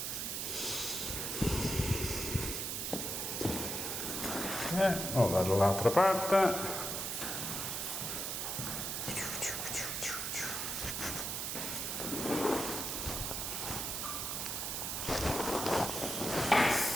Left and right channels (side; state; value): right; noise; hiss, 2 dB below the sound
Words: Oh, dall'altra parte.